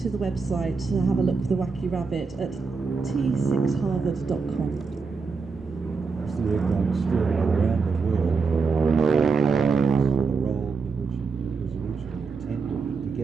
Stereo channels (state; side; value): quieter; left; 4.8 dB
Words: the website to have a look for the Wacky Rabbit at t6harvard.com. The aircraft still around the world for the role in which it was originally intended, to